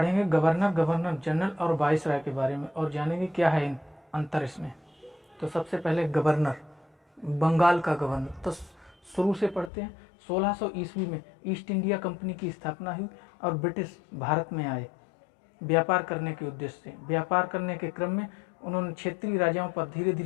गवर्नर, गवर्नर जनरल और वाइसराय के बारे में और जानेंगे क्या है अंतर इसमें। तो सबसे पहले गवर्नर, बंगाल का गवर्नर। तो शुरू से पढ़ते हैं। 1600 ईस्वी में ईस्ट इंडिया कंपनी की स्थापना हुई और ब्रिटिश भारत में आए व्यापार करने के उद्देश्य से। व्यापार करने के क्रम में उन्होंने क्षेत्रीय राजाओं पर धीरे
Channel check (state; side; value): drops out; right; at 9.7 s